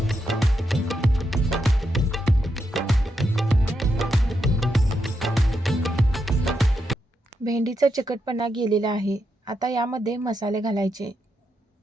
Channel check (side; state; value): both; normal; correlation 0.83